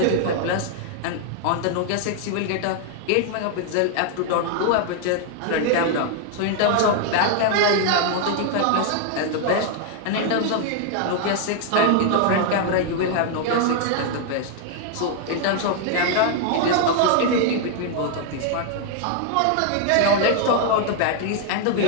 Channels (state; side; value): different; both; correlation 0.00